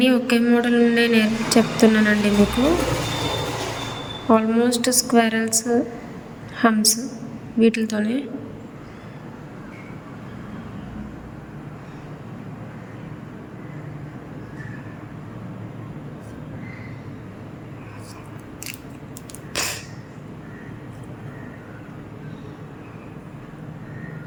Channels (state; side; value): identical; both; correlation 1.00